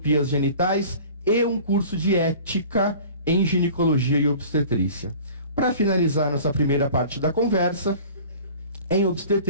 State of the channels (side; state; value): both; inverted; correlation -0.44